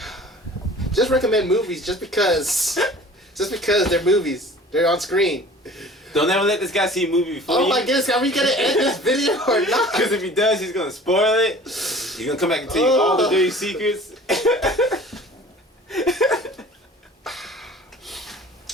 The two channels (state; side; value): normal; both; correlation 0.45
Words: Just recommend movies just because they're movies. They're on screen. Don't ever let this guy see a movie before Oh you. my goodness, are we gonna end this video or not? Because if he does, he's gonna spoil it. He's gonna come back and tell you all the dirty secrets.